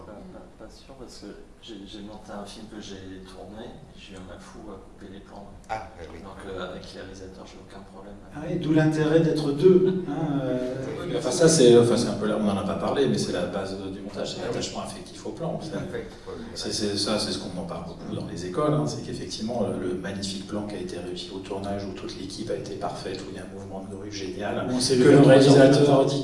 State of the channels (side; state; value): both; identical; correlation 1.00